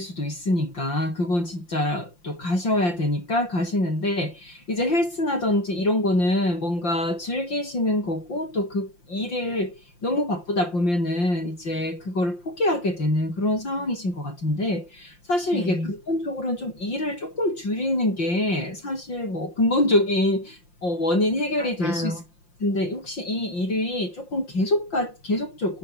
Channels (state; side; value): late; right; 5.7 ms